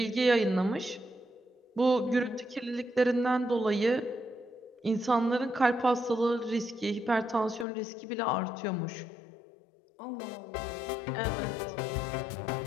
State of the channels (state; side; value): drops out; right; at 7.7 s